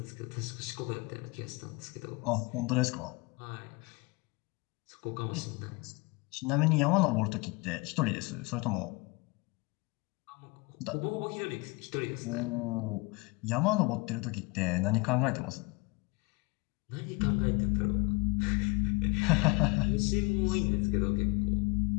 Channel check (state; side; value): quieter; right; 25.7 dB